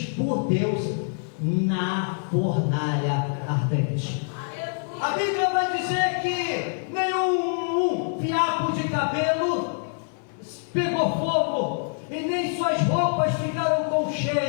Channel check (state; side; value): silent; right; 58 dB below the other